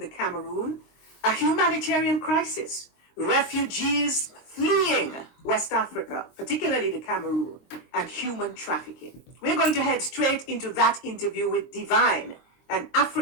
Cameroon, a humanitarian crisis, refugees fleeing West Africa, particularly the Cameroon, and human trafficking. We're going to head straight into that interview with Divine, an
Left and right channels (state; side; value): late; right; 23 ms